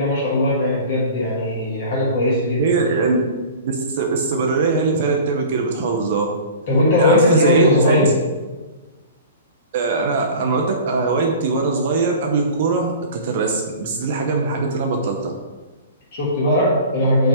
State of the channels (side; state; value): both; inverted; correlation -0.40